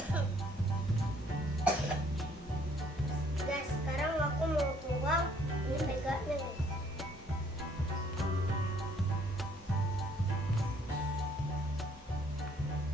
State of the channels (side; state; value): both; normal; correlation 0.62